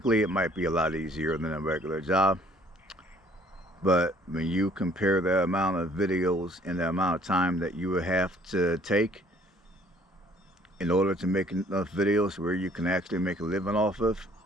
it might be a lot easier than a regular job. But when you compare the amount of videos and the amount of time that you would have to take in order to make enough videos where you can actually make a living off of,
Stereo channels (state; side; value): normal; both; correlation 0.59